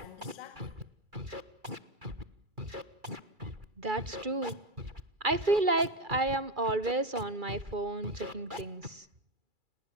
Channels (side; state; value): left; late; 2.3 ms